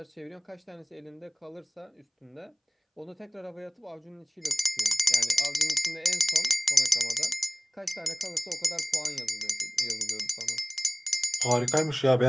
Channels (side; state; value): both; identical; correlation 1.00